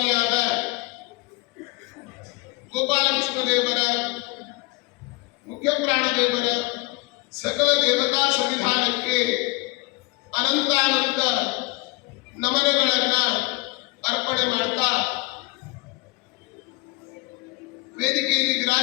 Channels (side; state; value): right; quieter; 24.5 dB